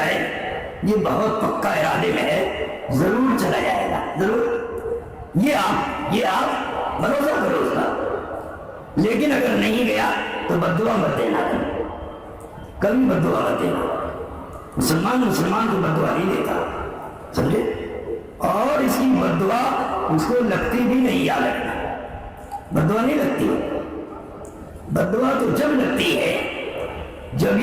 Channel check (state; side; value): identical; both; correlation 1.00